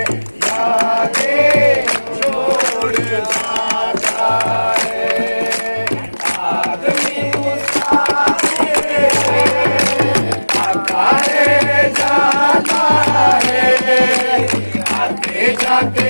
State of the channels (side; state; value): both; inverted; correlation -1.00